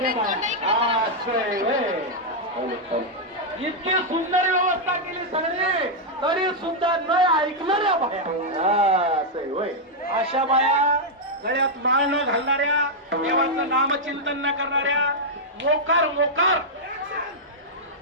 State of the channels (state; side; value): normal; both; correlation -0.04